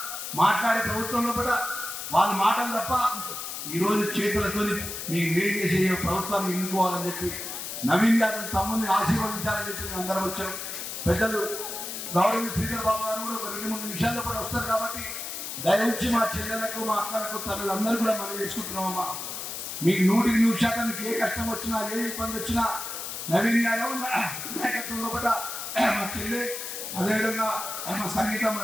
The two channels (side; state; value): left; noise; hiss, 6 dB below the sound